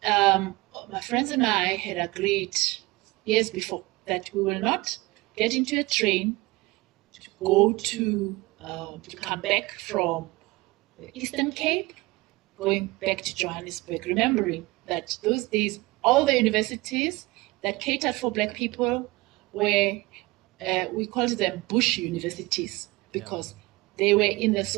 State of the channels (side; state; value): left; quieter; 22.0 dB